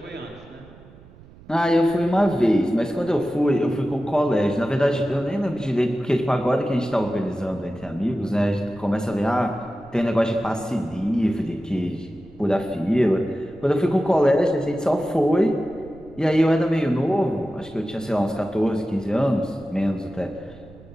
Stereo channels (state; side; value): noise; right; rumble, 22 dB below the sound